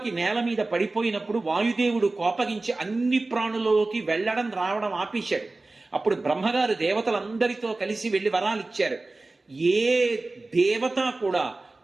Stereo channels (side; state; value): left; quieter; 3.2 dB